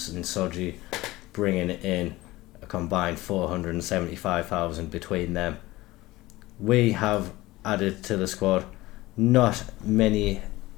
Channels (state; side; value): quieter; right; 18.9 dB